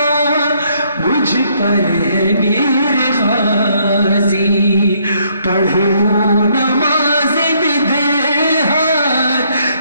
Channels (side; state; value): both; inverted; correlation -0.69